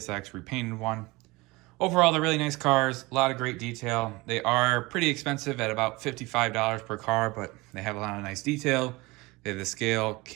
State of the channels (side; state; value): left; quieter; 22.9 dB